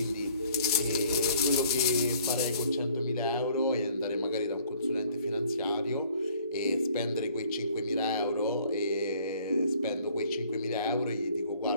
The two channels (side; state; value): both; inverted; correlation -0.58